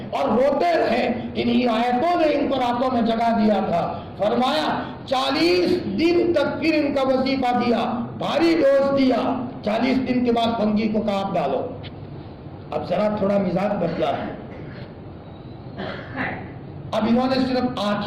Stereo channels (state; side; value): identical; both; correlation 1.00